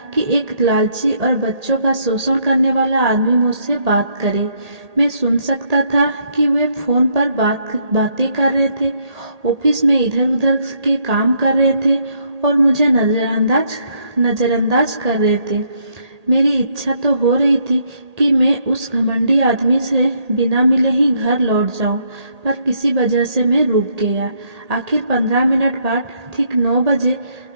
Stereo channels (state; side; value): late; left; 1.8 ms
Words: कि एक लालची और बच्चों का शोषण करने वाला आदमी मुझसे बात करे। मैं सुन सकता था कि वे फोन पर बातें कर रहे थे, ऑफिस में इधर उधर के काम कर रहे थे और मुझे नजरअंदाज कर रहे थे। मेरी इच्छा तो हो रही थी कि मैं उस घमंडी आदमी से बिना मिले ही घर लौट जाऊं, पर किसी वजह से मैं रुक गया। आखिर 15 मिनट बाद ठीक 9 बजे